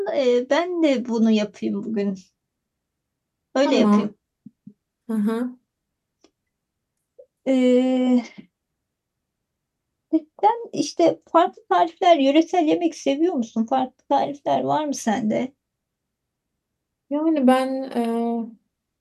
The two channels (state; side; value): identical; both; correlation 1.00